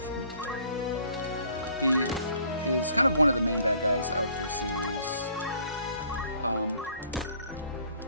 He is kind of one of the main bad guys of the series.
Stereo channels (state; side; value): inverted; both; correlation -0.58